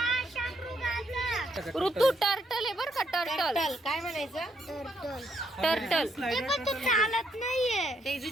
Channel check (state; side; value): normal; both; correlation 0.74